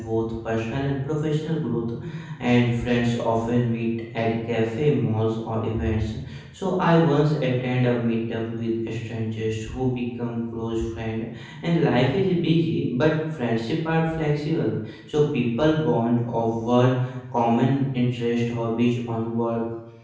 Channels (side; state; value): both; identical; correlation 1.00